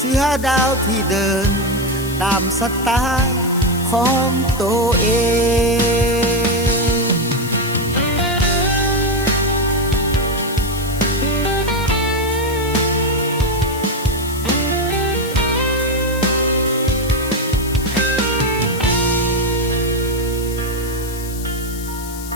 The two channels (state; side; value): noise; left; hiss, 13 dB below the sound